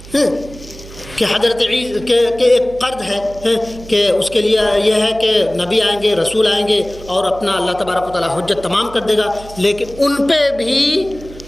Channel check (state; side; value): noise; right; hum, 17 dB below the sound